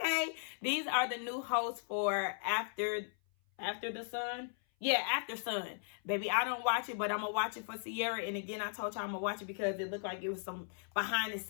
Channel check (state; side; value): silent; right; 53 dB below the other